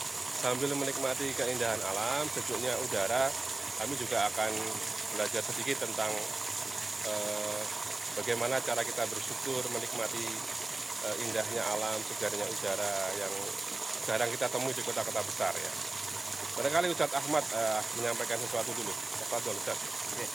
sambil menikmati keindahan alam, sejuknya udara, kami juga akan belajar sedikit tentang bagaimana cara kita bersyukur menikmati indahnya alam, segarnya udara yang jarang kita temui di kota-kota besar ya. Barangkali Ustadz Ahmad menyampaikan sesuatu dulu. Tafadhol Ustadz. Oke.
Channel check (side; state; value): left; quieter; 3.0 dB